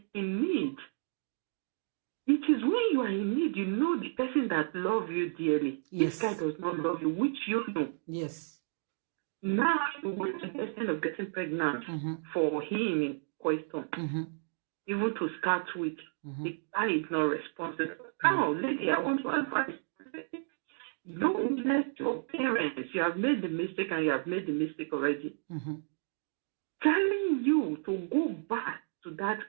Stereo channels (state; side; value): silent; left; digital silence